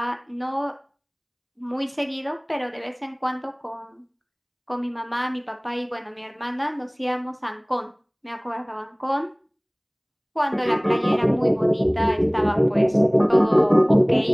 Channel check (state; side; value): identical; both; correlation 1.00